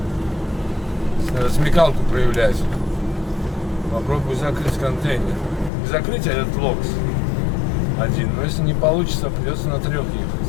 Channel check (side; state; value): right; drops out; at 5.7 s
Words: Надо смекалку проявлять. Попробую закрыть контейнер. Не закрыть, а этот локс. один. Но если не получится, придется на 3 ехать.